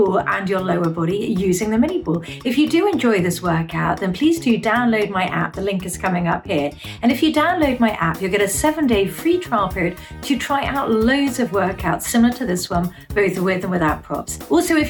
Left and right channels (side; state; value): both; identical; correlation 1.00